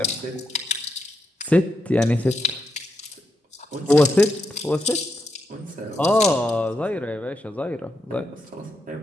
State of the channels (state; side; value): normal; both; correlation 0.83